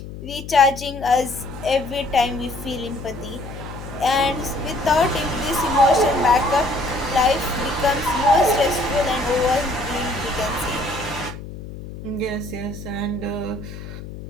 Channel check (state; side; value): noise; left; hum, 12 dB below the sound